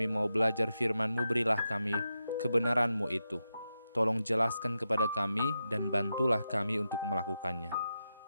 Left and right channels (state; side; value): inverted; both; correlation -0.88